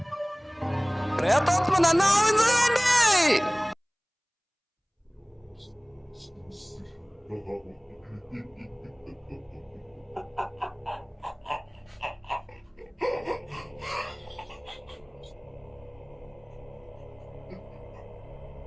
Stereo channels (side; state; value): both; identical; correlation 1.00